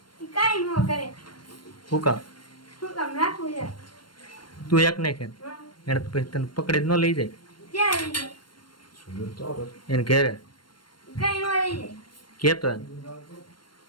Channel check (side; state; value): right; late; 0.72 ms